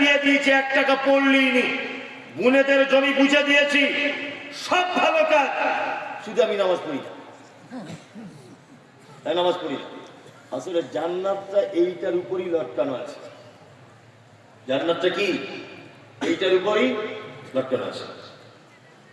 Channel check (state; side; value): identical; both; correlation 1.00